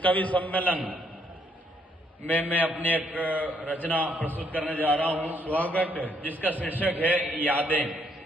कवि सम्मेलन में मैं अपनी एक रचना प्रस्तुत करने जा रहा हूं। स्वागत है। जिसका शीर्षक है यादें।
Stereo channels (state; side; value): normal; both; correlation 0.71